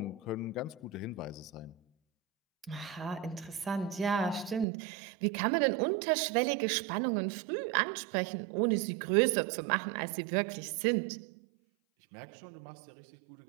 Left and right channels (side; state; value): left; drops out; at 4.7 s